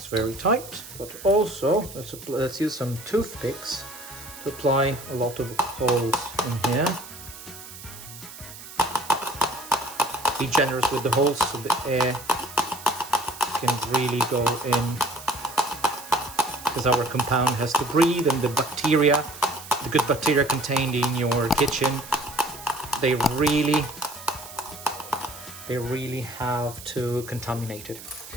very tight, but also let's use some toothpicks to apply a lot of holes in here. Be generous with the holes so the air can really go in, because our compound has to breathe, and the bacteria, the good bacteria contained in your kitchen, they really have to contaminate it.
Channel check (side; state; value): right; noise; hiss, 15 dB below the sound